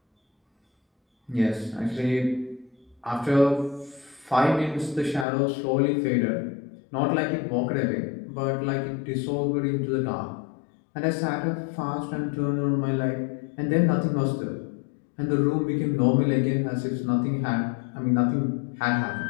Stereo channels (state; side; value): drops out; right; at 5.2 s